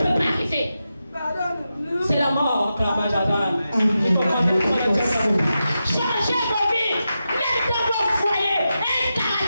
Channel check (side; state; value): both; inverted; correlation -0.90